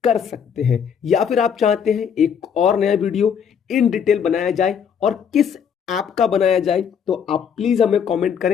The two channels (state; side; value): quieter; right; 7.4 dB